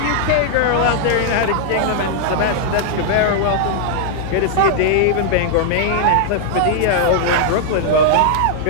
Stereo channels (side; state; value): both; different; correlation -0.01